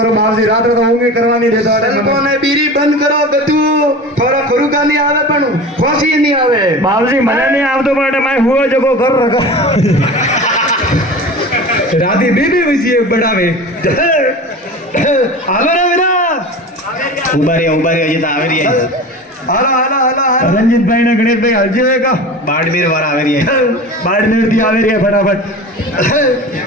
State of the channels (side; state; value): both; normal; correlation 0.34